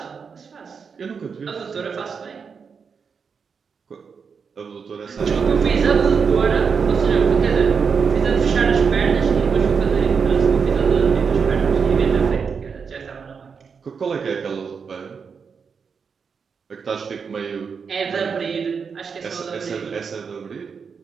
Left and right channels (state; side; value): quieter; left; 5.9 dB